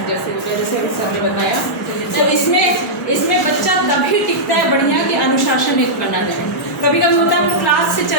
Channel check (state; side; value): normal; both; correlation -0.10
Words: जैसे अभी सर ने बताया। तो इसमें बच्चा तभी टिकता है बढ़िया कि अनुशासन एक बना है। कभी कभी होता है हम क्लास से